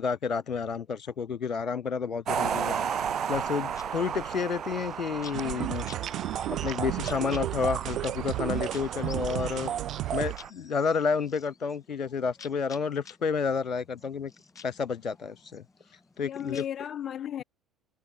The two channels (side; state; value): both; normal; correlation 0.57